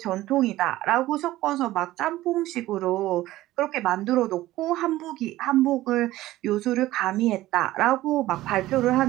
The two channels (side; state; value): left; quieter; 16.1 dB